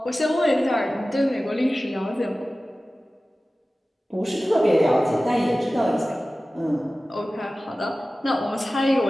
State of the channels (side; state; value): both; normal; correlation 0.96